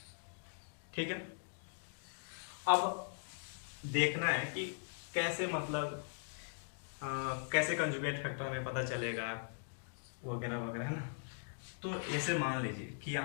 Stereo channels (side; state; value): right; silent; digital silence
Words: ठीक है, अब देखना है कि कैसे मतलब कैसे कंजुगेट फैक्टर हमें पता चलेगा वगैरह वगैरह, है ना। तो ऐसे मान लीजिए कि